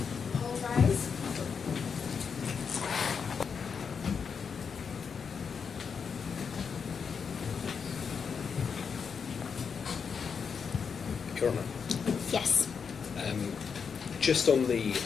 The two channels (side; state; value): right; quieter; 6.2 dB